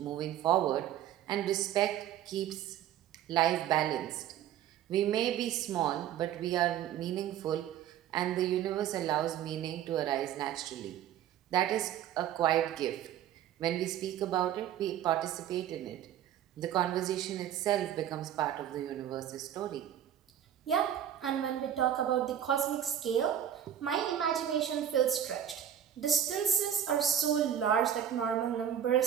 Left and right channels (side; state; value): left; quieter; 10.3 dB